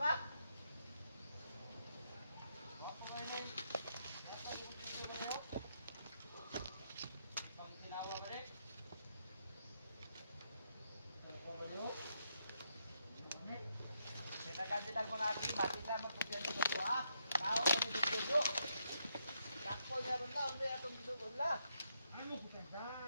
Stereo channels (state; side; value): inverted; both; correlation -0.78